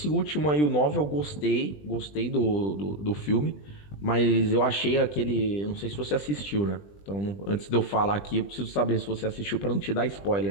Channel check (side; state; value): right; late; 20 ms